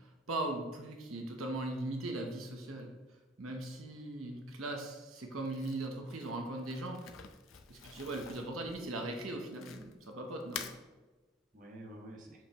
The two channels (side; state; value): both; normal; correlation 0.47